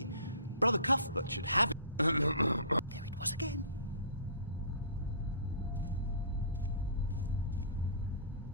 Brother Cuthbert should have it. There it was again.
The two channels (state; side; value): inverted; both; correlation -0.43